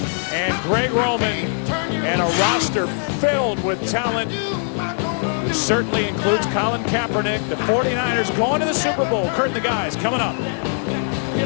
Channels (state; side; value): silent; right; digital silence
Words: and Greg Roman, and a roster filled with talent. Certainly includes Colin Kaepernick. The 49ers going to the Super Bowl. Kurt and the guys coming up.